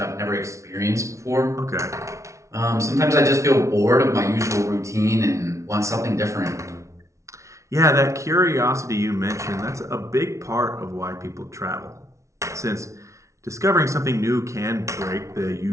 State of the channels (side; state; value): left; late; 0.14 ms